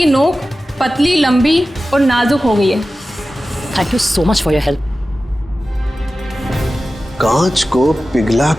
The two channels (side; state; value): both; normal; correlation 0.95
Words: नोक पतली, लंबी और नाजुक हो गई है। Thank you so much for your help. कांच को पिघला